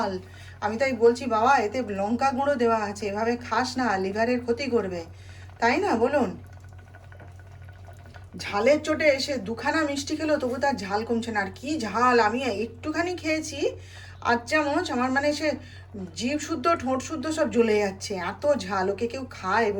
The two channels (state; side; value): identical; both; correlation 1.00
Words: আমি তাই বলছি বাবা এতে লঙ্কা গুঁড়ো দেওয়া আছে, এভাবে খাস না, লিভারের ক্ষতি করবে, তাই না বলুন। ঝালের চোটে এসে দুখানা মিষ্টি খেলো তবু তার ঝাল কমছে না। আর কি ঝাল, আমি একটুখানি খেয়েছি, 8 চামচ, আমার মানে সে জিভ শুদ্ধ ঠোঁট শুদ্ধ সব জ্বলে যাচ্ছে, এত ঝাল। ওকে কেউ খায়